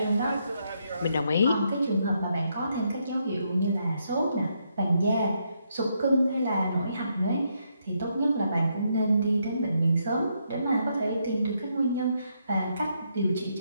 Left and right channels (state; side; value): inverted; both; correlation -0.77